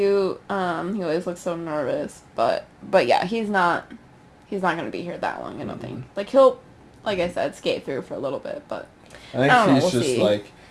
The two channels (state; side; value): identical; both; correlation 1.00